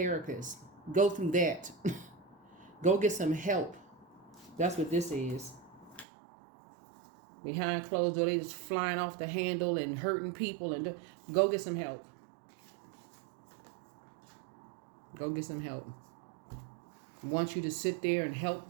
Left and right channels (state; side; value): drops out; left; at 6.1 s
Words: Go through that. Go get some help. That's what this is. Behind closed doors, they just flying off the handle and hurting people. And go get some help. Go get some help. I want you to sit there and help